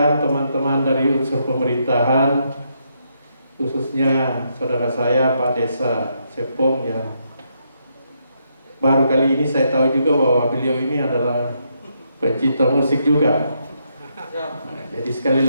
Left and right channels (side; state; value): both; inverted; correlation -0.78